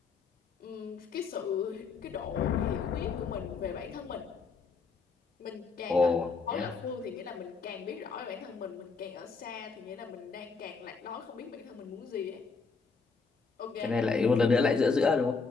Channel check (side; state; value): right; quieter; 4.7 dB